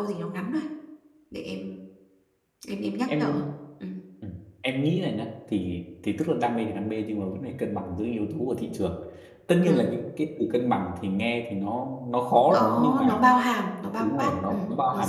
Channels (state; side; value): identical; both; correlation 1.00